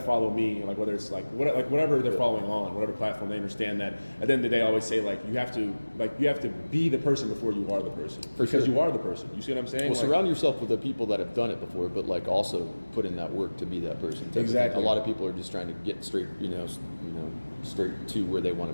follow me, like whether it's like whatever they're following on, whatever platform, they understand that. At the end of the day, I always say like you have to be the person before you are the person, because you are the person. You see what I'm saying? Well, surround yourself with the people that have done it before, but like also put in that work to be that person. Exactly. A lot of people are just trying to get straight, straight to where they want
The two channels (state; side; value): inverted; both; correlation -1.00